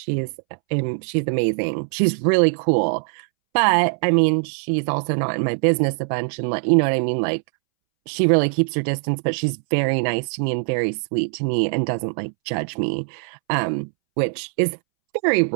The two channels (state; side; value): silent; left; 64 dB below the other